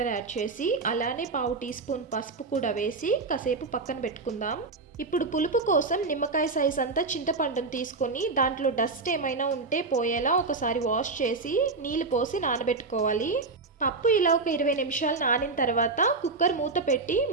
యాడ్ చేసి అలానే 1/2 టీ స్పూన్ పసుపు కూడా వేసి కాసేపు పక్కన పెట్టుకుందాం. ఇప్పుడు పులుపు కోసం నిమ్మకాయ సైజ్ అంతా చింతపండును తీసుకొని దాంట్లో డస్ట్ ఏమైనా ఉంటే పోయేలా ఒకసారి వాష్ చేసి నీళ్ళు పోసి నానబెట్టుకోవాలి. పప్పు ఇలా ఒక 20 నిమిషాలు నానిన తర్వాత కుక్కర్ మూత పెట్టి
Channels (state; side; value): quieter; left; 4.0 dB